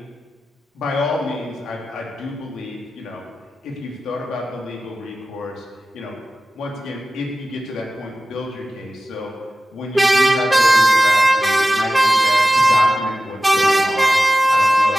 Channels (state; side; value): normal; both; correlation 0.94